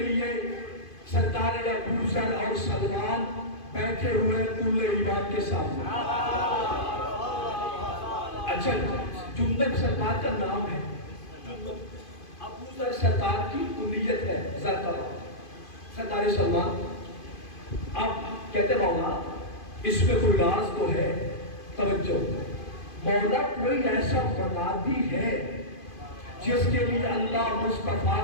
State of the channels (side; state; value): right; late; 2.5 ms